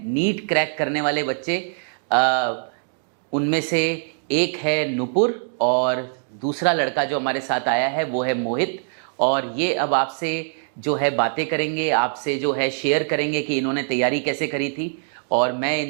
नीट क्रैक करने वाले बच्चे। उनमें से एक है नुपुर और दूसरा लड़का जो हमारे साथ आया है वो है मोहित। और ये अब आपसे जो है बातें करेंगे, आपसे जो है शेयर करेंगे कि इन्होंने तैयारी कैसे करी थी। और मैं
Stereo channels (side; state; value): left; silent; digital silence